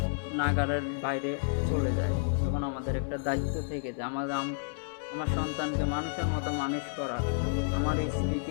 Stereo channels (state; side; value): silent; right; 57 dB below the other